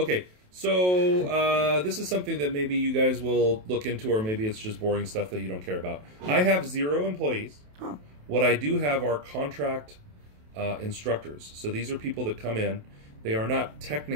So this is something that maybe you guys will look into, or maybe it's just boring stuff that you don't care about. I have 0 employees. Huh. What I do have are contract instructors. So these are people that come in. They are not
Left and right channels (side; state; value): left; late; 28 ms